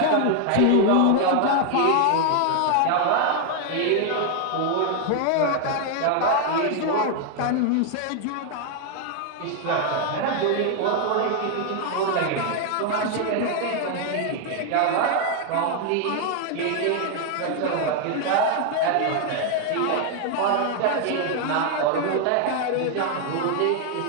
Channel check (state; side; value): different; both; correlation 0.00